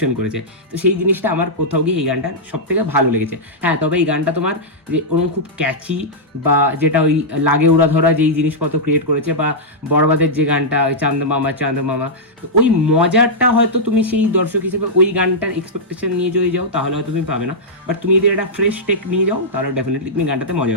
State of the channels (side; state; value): both; normal; correlation -0.09